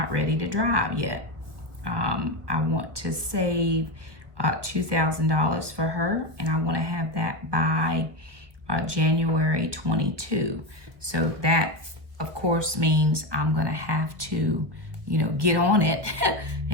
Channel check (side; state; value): left; late; 1.4 ms